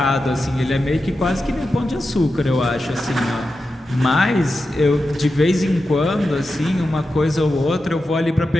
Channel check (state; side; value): normal; both; correlation 0.90